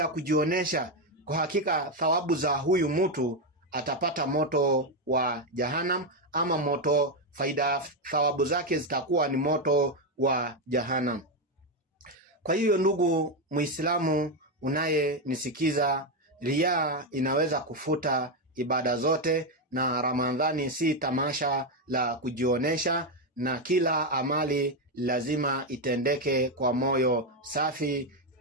kujionesha, kwa hakika thawabu za huyu mtu atapata moto wa Jahannam, ama thawabu zake zitakuwa ni moto wa Jahannam. Kwa hiyo ndugu Muislamu unayenisikiza, riya inaweza kufuta ibada zote, na Ramadhani si tamasha la kujionesha, na kila amali lazima itendeke kwa moyo safi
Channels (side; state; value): both; normal; correlation 0.06